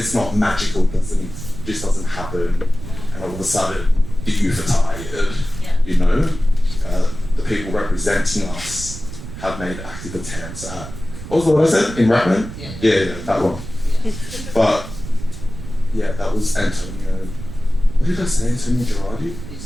not magical, just doesn't happen, and all of a sudden the youth are tired. You know, the people representing us have made active attempts at. What was the word I said in Rattler? Yeah, that one. But yeah, that was Antonio. What did I say? Antonio Girardi?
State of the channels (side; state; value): right; noise; rumble, 11 dB below the sound